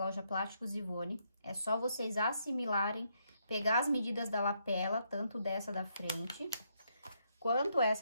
Plásticos Ivone. É só vocês assimilarem, pegar as medidas da lapela, tanto dessa da frente, quanto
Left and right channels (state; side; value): inverted; both; correlation -0.76